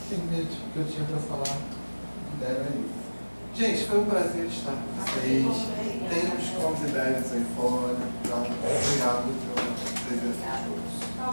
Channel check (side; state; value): both; inverted; correlation -1.00